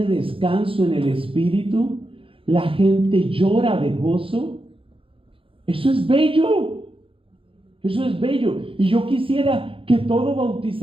descanso en el Espíritu, la gente llora de gozo. Eso es bello, eso es bello. Y yo quisiera que todo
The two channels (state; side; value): late; left; 0.26 ms